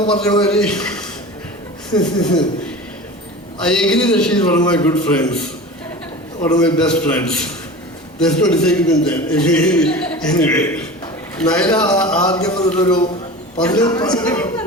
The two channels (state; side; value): normal; both; correlation 0.34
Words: മാതിരി I agree that she is one of my good friends, one of my best friends. There's no disagreement there. Anyway, Nayana ആദ്യം ഒരു 15